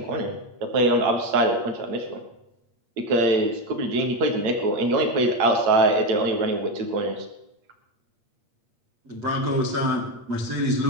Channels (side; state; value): left; late; 8.5 ms